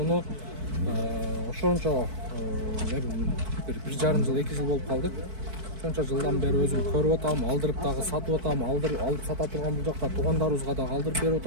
ошончо 1,5 жыл 2 жыл болуп калды. Ошончо жылдан бери өзүм көрүп атам, алдырып дагы сатып атам, алып сата турган бул жакта туугандарыбызга дагы алдырып берип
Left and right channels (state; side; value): late; left; 4.6 ms